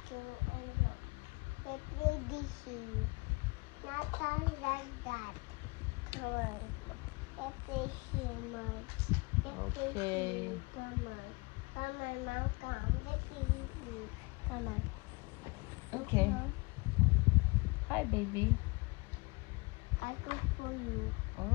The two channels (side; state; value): right; quieter; 27.0 dB